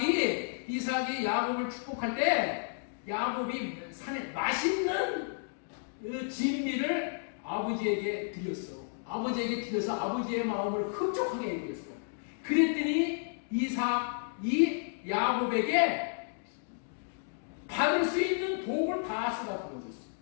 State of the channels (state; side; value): silent; right; digital silence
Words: 이삭이 야곱을 축복할 때 야곱이 산에 맛있는 진미를 아버지에게 드렸어. 아버지에게 드려서 아버지의 마음을 흡족하게 해드렸어. 그랬더니 이삭이 야곱에게 받을 수 있는 복을 다 쏟아 부어줬어.